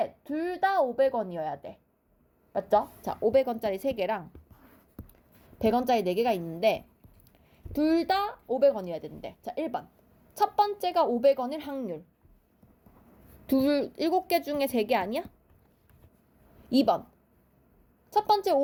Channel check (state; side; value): identical; both; correlation 1.00